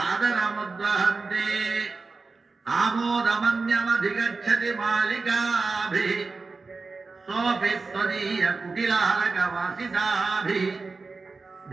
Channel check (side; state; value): left; quieter; 4.1 dB